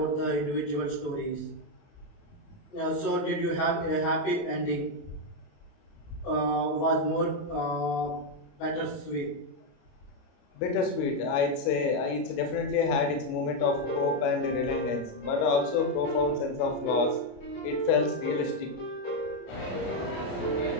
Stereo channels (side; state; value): right; late; 28 ms